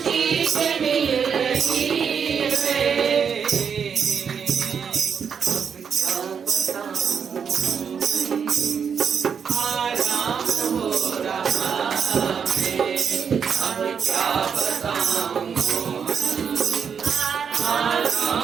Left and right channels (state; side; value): quieter; left; 6.9 dB